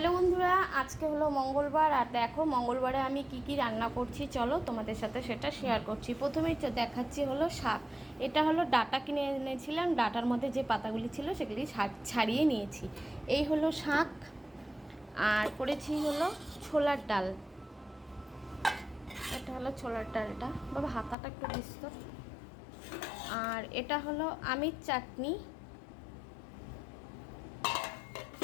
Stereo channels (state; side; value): drops out; right; at 21.2 s